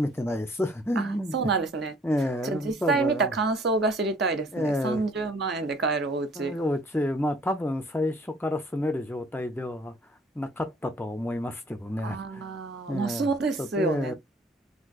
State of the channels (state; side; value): normal; both; correlation 0.57